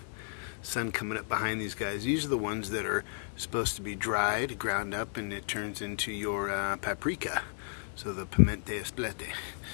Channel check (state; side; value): silent; right; digital silence